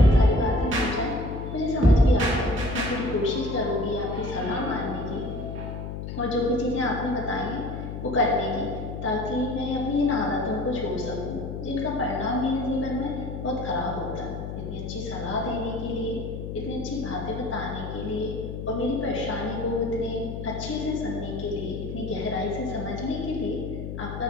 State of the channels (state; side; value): noise; left; hum, 6 dB below the sound